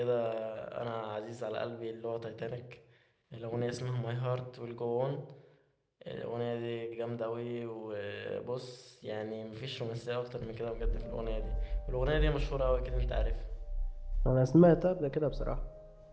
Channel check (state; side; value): identical; both; correlation 1.00